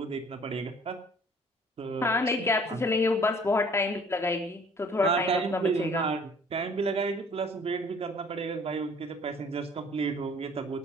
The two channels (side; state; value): both; normal; correlation 0.54